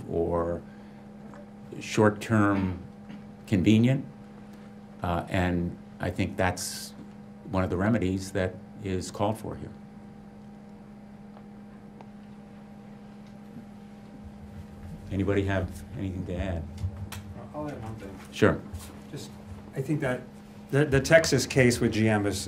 or short-term convenient. And I think that's one of the remedies that is called for here. Anybody have anything to add? I'll add one thing. Sure. Just, I think that the Texas case with GM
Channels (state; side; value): identical; both; correlation 1.00